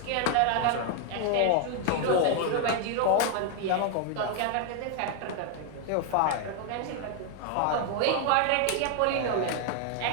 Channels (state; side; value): different; both; correlation 0.00